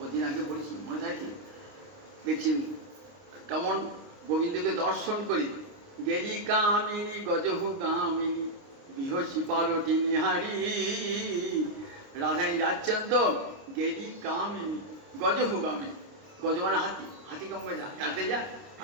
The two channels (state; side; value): late; left; 29 ms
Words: ওদিন আগে পড়েছি, মনে থাকে। দেখছি কেমন গোবিন্দকে দর্শন করি, গেলি কামিনী গজহু গামিনী বিহসী পালটি নিহারি। রাধারানী যাচ্ছেন তো, গেলি কামিনী গজহু গামিনী, গজ মানে হাতি, হাতি কম করে যাতে যায়,